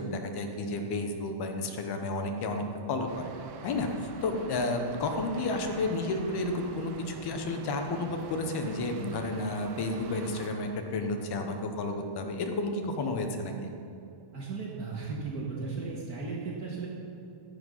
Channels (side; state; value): right; late; 1.1 ms